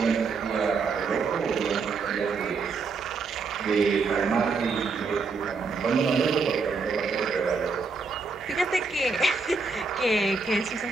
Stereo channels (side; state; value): left; quieter; 4.5 dB